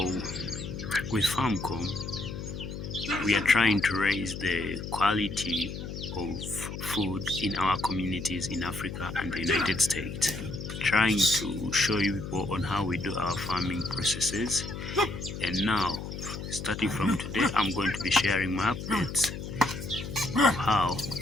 with Farmcom, we are trying to raise the quality of food in our communities in Africa and the United States, trying to show you people on how we do our farming processes. And now, starting from today, I'm going to be sharing my updates of how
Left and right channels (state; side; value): noise; left; hum, 8 dB below the sound